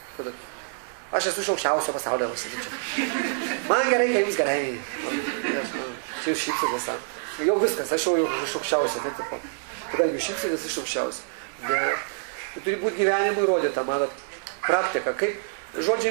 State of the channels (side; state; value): left; silent; digital silence